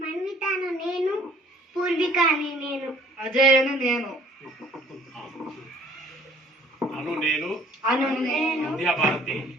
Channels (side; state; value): both; normal; correlation 0.56